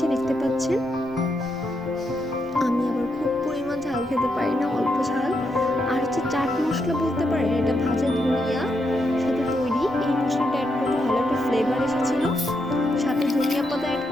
দেখতে পাচ্ছেন। আমি আবার খুব পরিমাণ ঝাল খেতে পারি না, অল্প ঝাল। আর হচ্ছে চাট মশলা বলতে পারেন, এটা ভাজা ধনিয়া সাথে তৈরি। এই মশলাটা অ্যাড করে ভালো একটা ফ্লেভার এসেছিল। সাথে ধনিয়া পাতা অ্যাড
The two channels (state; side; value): normal; both; correlation 0.81